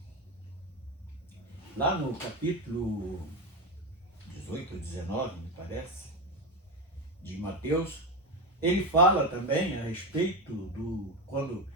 lá no capítulo 18 ou 19, me parece, de Mateus, ele fala também a respeito do, quando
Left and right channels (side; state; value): both; normal; correlation 0.15